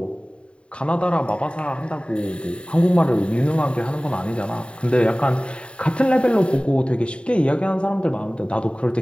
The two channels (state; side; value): late; right; 0.057 ms